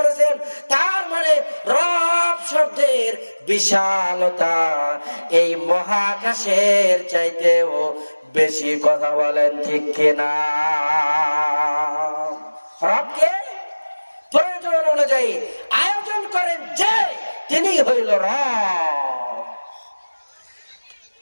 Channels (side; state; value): both; inverted; correlation -1.00